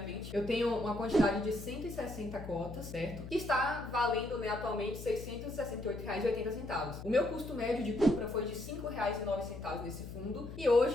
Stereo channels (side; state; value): left; noise; hum, 11 dB below the sound